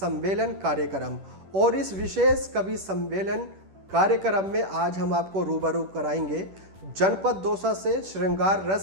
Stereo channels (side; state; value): left; late; 10 ms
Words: कार्यक्रम और इस विशेष कवि सम्मेलन कार्यक्रम में आज हम आपको रूबरू कराएंगे जनपद दौसा से श्रृंगार